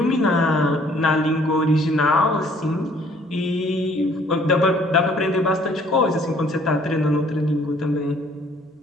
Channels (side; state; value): both; normal; correlation 0.60